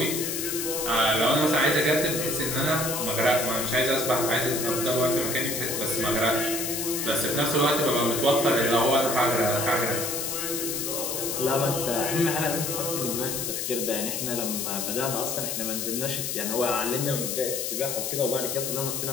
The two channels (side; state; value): left; noise; hiss, 2 dB below the sound